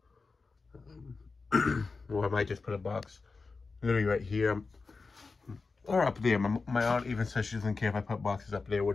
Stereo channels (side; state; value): right; quieter; 4.2 dB